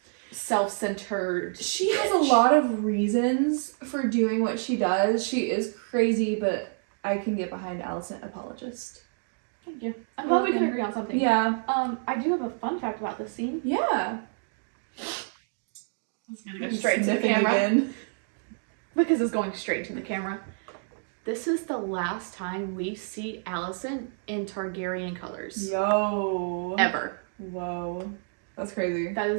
self-centered She has bitch. a lot of reasons for doing what she does. She is crazy, but I can get behind Alicent apologist. Thank you. I'm glad we can agree on something. Yeah. I do have a fun fact about this scene. Yeah. It's gonna go straight to the camera. Again. Because it's going straight to the camera. This is the last time we see Alicent in Targaryen colors. Yo. Ever. Whoa. That's crazy. That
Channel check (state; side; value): silent; left; 59 dB below the other